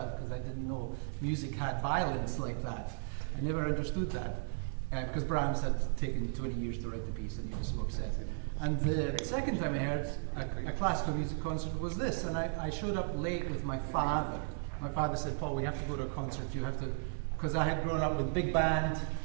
because I didn't know music had violence like that. I never understood that because Brahms had taken 20 years to write the piece and he was so upset. And the second time I heard a classical music concert was this, and I showed up late with my father. My father said, "Paul, we have to go to a concert. You have to," because I had grown up with big band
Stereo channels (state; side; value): silent; left; digital silence